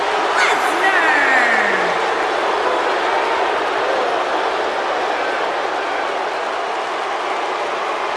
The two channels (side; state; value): both; identical; correlation 1.00